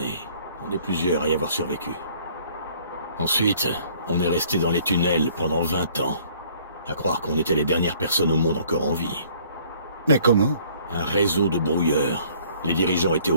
On est plusieurs à y avoir survécu. Ensuite, on est resté dans les tunnels pendant 20 ans. À croire qu'on était les dernières personnes au monde encore en vie. Mais comment? Un réseau de brouilleurs. Les dirigeants étaient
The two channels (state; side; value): inverted; both; correlation -0.58